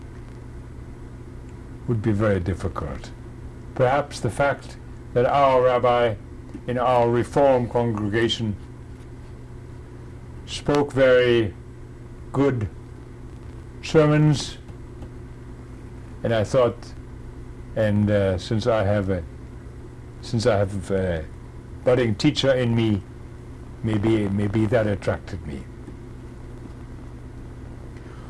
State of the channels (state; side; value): identical; both; correlation 1.00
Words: Would be very difficult. Perhaps the fact that our rabbi in our Reform congregation spoke very good sermons, and I thought, and since I have a budding teacher in me, maybe that attracted me.